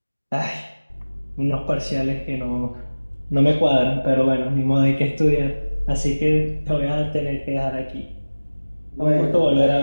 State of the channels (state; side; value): inverted; both; correlation -1.00